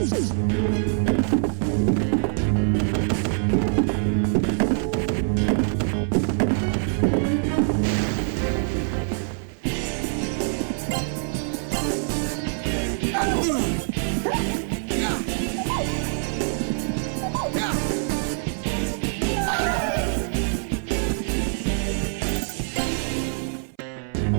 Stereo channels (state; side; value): silent; left; 59 dB below the other